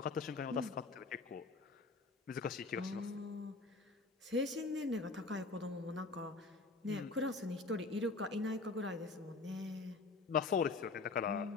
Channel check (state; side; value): quieter; right; 3.9 dB